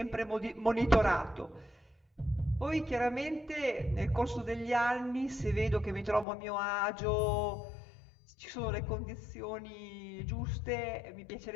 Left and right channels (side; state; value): right; drops out; at 6.2 s